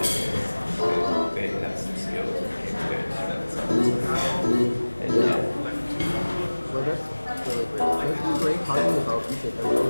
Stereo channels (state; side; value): inverted; both; correlation -1.00